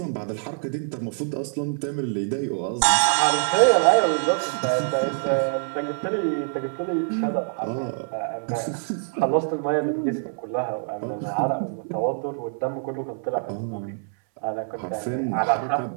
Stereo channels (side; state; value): left; silent; 62 dB below the other